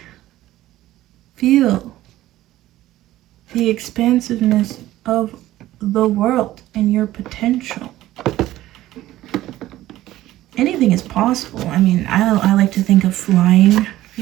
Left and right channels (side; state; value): left; quieter; 15.1 dB